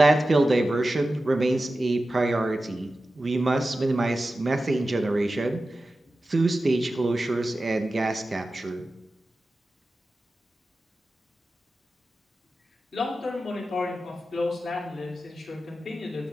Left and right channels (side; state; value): both; normal; correlation 0.94